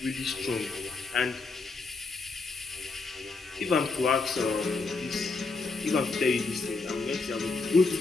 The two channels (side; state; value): right; quieter; 4.0 dB